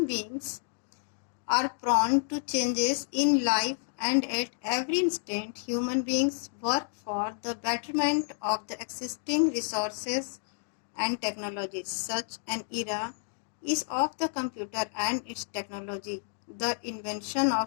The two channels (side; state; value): right; silent; digital silence